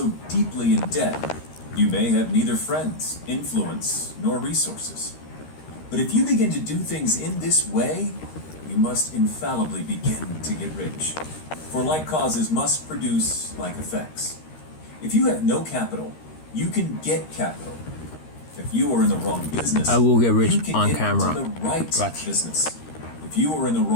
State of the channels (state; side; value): late; right; 13 ms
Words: deeply in debt you may have neither friends, influence, nor resources. But if you begin to do things in this way, you must infallibly begin to get rich. For like causes must produce like effects. If you have no capital, you can get capital. If you are in the wrong business, I will get rich you can on get camera. into the right Watch. business. If you are in the